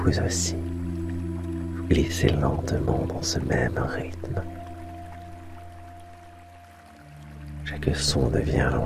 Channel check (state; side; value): identical; both; correlation 1.00